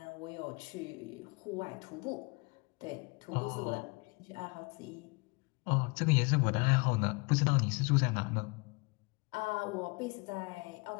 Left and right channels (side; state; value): right; quieter; 29.1 dB